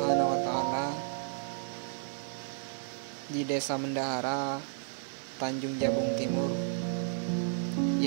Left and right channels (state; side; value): silent; left; 56 dB below the other